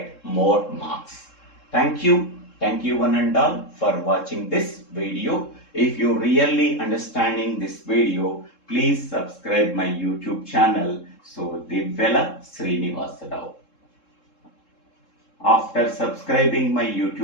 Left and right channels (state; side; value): late; right; 3.7 ms